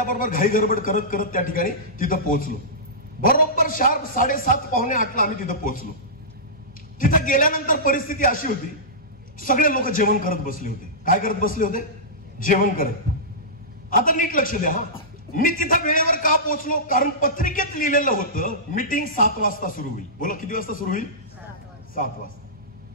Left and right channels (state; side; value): normal; both; correlation -0.17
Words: घाई गडबड करत करत त्या ठिकाणी तिथं पोहोचलो. बरोबर 7:30-7:45 आम्ही तिथं पोहोचलो. तिथं गेल्यानंतर परिस्थिती अशी होती, सगळे लोक जेवण करत बसले होते. काय करत बसले होते? जेवण करत. आता नीट लक्ष द्या. मी तिथं वेळेवर का पोहोचलो? कारण पत्रिकेत लिहिलेलं होतं मीटिंग 7 वाजता सुरू होईल. बोला किती वाजता सुरू होईल? 7 वाजता.